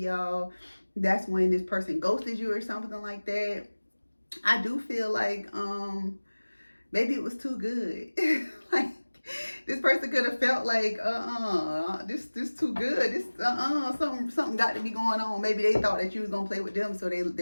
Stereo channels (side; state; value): both; inverted; correlation -1.00